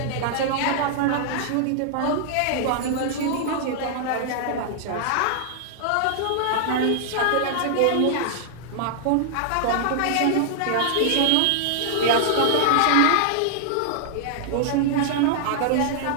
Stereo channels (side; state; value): both; different; correlation -0.01